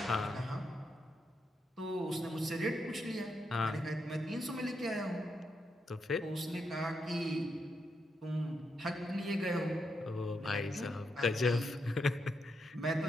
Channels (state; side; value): normal; both; correlation 0.82